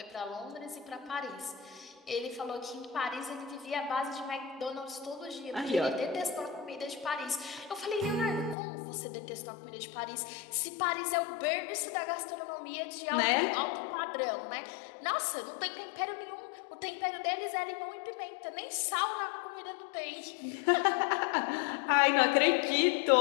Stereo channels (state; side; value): drops out; right; at 8.6 s